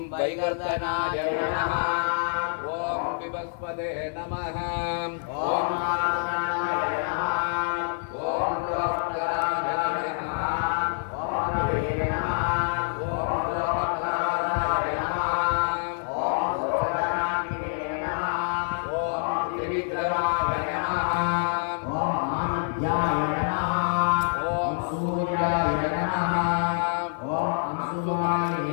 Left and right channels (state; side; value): silent; right; 56 dB below the other